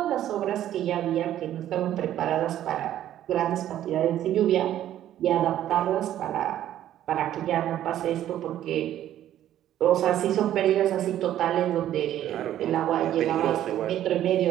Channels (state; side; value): quieter; left; 12.0 dB